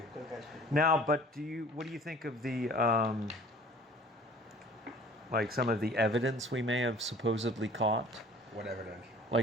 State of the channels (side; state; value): both; normal; correlation 0.48